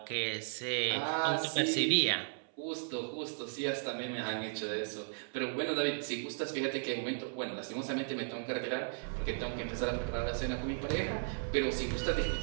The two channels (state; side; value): silent; left; 54 dB below the other